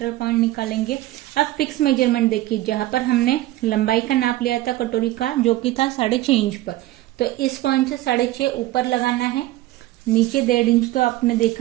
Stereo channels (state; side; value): quieter; left; 16.4 dB